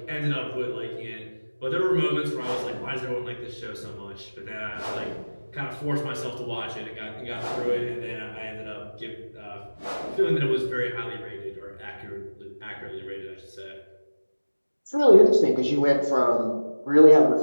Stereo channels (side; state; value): both; inverted; correlation -1.00